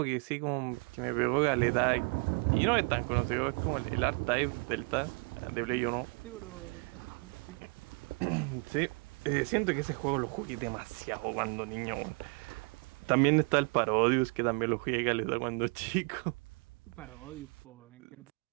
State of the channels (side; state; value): left; quieter; 34.3 dB